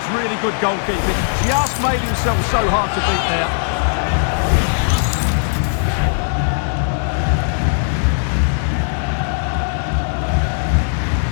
really good goalkeeping. Just made himself so hard to beat there.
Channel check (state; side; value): silent; right; digital silence